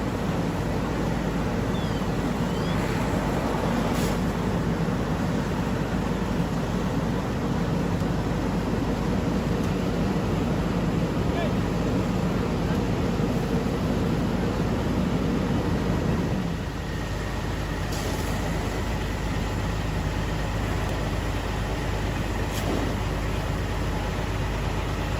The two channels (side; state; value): both; identical; correlation 1.00